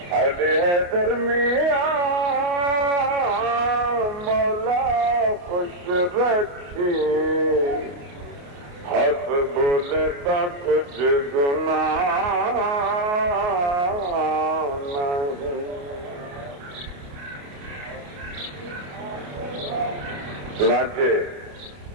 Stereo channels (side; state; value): left; late; 28 ms